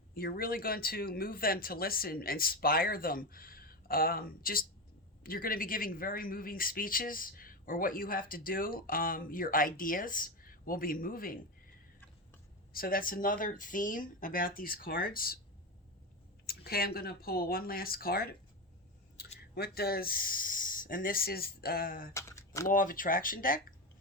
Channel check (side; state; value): both; normal; correlation 0.17